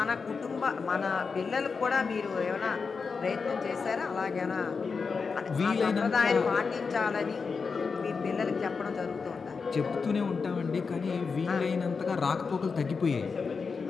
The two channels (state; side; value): quieter; right; 5.1 dB